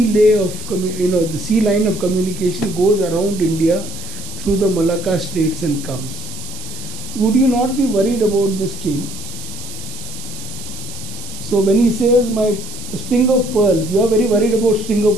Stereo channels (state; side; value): noise; right; hiss, 13 dB below the sound